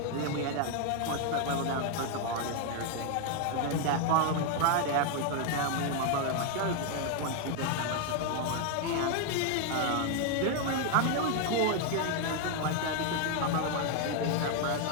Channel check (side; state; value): both; different; correlation 0.00